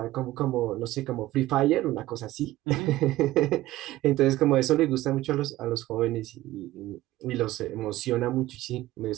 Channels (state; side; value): quieter; left; 16.4 dB